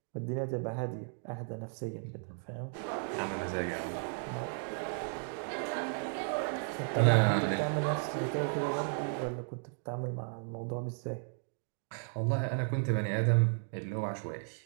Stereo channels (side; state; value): left; silent; 55 dB below the other